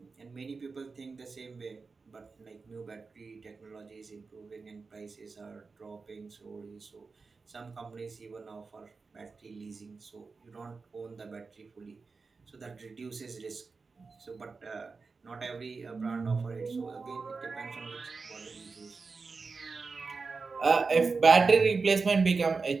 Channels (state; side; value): quieter; left; 4.5 dB